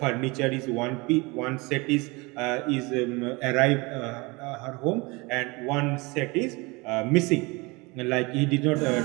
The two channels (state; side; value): quieter; left; 25.8 dB